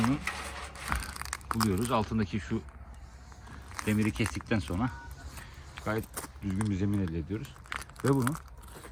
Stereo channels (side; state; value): both; identical; correlation 1.00